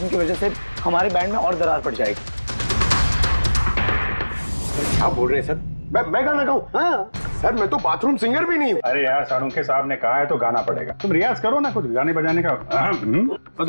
की वजह से हमारे बैंड में और दरार पड़ जाएगी। क्या बोल रहे हैं सर? मैं गाना गाऊं? हाँ सर, मैं तो बाथरूम सिंगर भी नहीं हूँ। अरे यार, सारुंखे साहब ने कहा है तो गाना पड़ेगा, तुम रियाज करो ना कुछ गाने बजाने का। तो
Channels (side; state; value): both; inverted; correlation -1.00